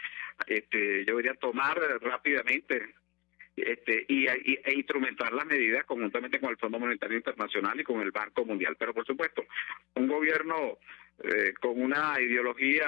tomar rápidamente, e instrumentar las medidas conjuntamente con el Fondo Monetario Internacional y con el Banco Mundial. Pero por supuesto, un gobierno con una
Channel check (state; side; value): quieter; right; 24.1 dB